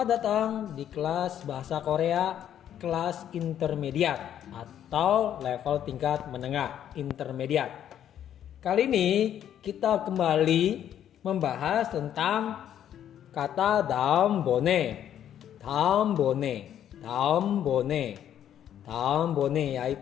datang di kelas Bahasa Korea kelas intermediate atau level tingkat menengah intermediate. Kali ini kita kembali membahas tentang kata daum bone. Daum bone, daum bone, daum bone,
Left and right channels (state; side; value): quieter; right; 10.3 dB